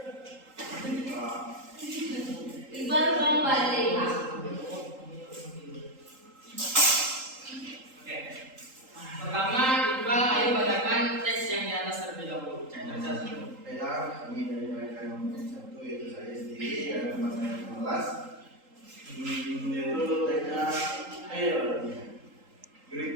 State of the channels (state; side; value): late; left; 3.8 ms